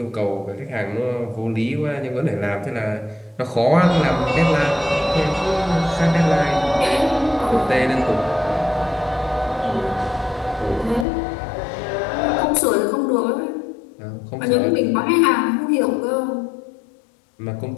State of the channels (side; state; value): right; drops out; at 11.1 s